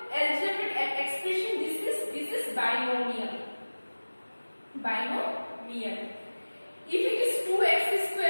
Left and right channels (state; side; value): inverted; both; correlation -1.00